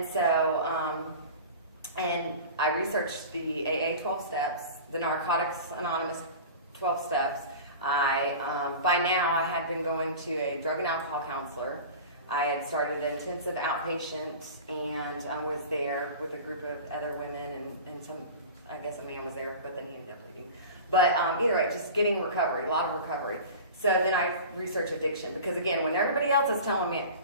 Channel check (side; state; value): both; inverted; correlation -0.35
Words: so, and I researched the AA 12 steps, the Narcotics Anonymous 12 steps. By now, I had been going to a drug and alcohol counselor. I had started an intensive outpatient, and I was there with a group of other women, and some, I guess a man was there, but then he ended up leaving. But either way, just getting recovery, a lot of recovery. So then I researched addiction, because again, when everybody else is telling me,